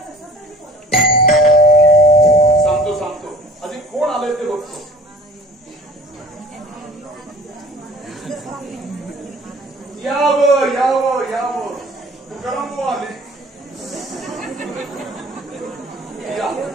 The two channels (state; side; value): normal; both; correlation 0.46